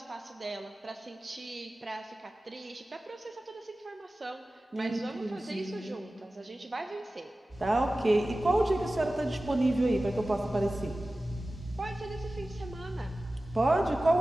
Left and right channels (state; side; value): normal; both; correlation 0.96